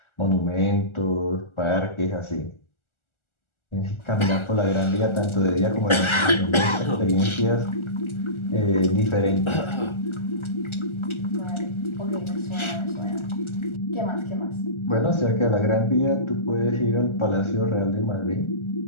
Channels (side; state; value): right; late; 1.4 ms